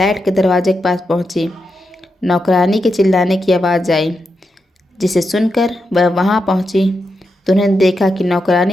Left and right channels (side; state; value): both; normal; correlation 0.86